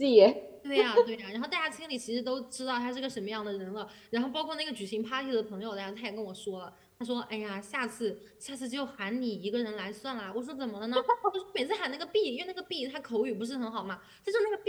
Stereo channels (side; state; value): both; identical; correlation 1.00